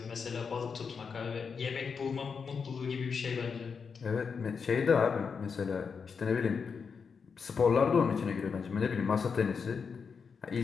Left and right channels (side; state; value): right; quieter; 5.8 dB